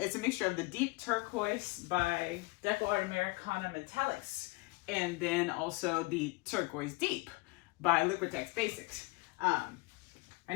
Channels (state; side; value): quieter; right; 24.7 dB